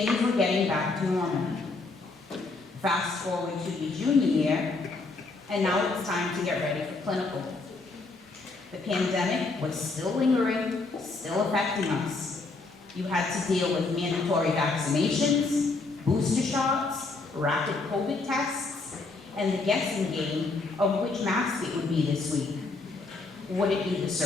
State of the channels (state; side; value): quieter; right; 3.6 dB